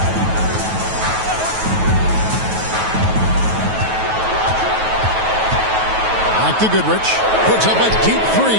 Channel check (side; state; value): left; late; 9.2 ms